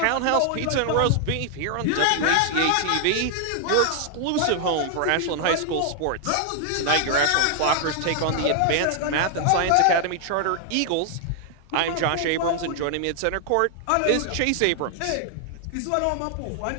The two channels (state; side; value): different; both; correlation 0.00